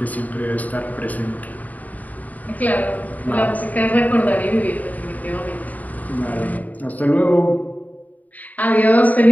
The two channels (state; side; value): late; right; 0.076 ms